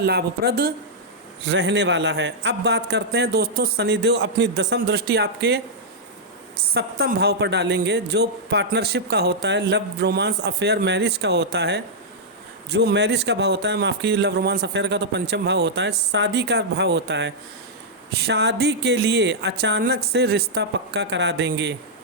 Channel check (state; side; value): normal; both; correlation -0.07